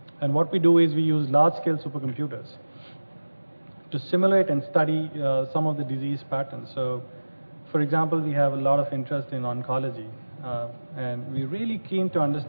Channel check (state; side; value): inverted; both; correlation -1.00